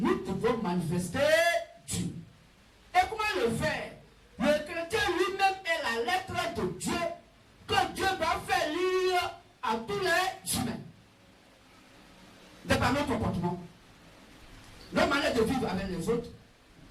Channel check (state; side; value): identical; both; correlation 1.00